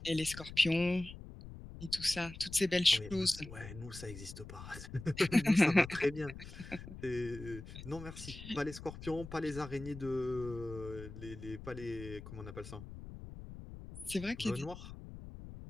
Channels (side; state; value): left; noise; rumble, 12 dB below the sound